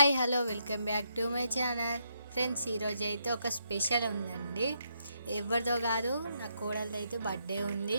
hello welcome back to my channel friends. ఈరోజు అయితే ఒక స్పెషల్ ఉందండి. ఎవరిదో కాదు, నా కోడలిది అయితే బర్త్డే ఉంది.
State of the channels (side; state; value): both; inverted; correlation -0.78